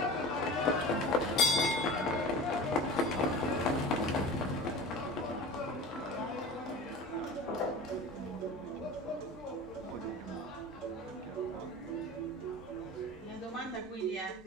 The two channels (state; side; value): normal; both; correlation 0.36